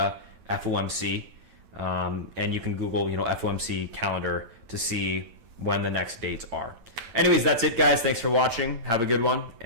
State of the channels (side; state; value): left; late; 8.9 ms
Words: FOMC, and you can Google, FOMC calendar to see when the next dates are. Anyways, that's it, guys. Thanks for watching. Have a good one,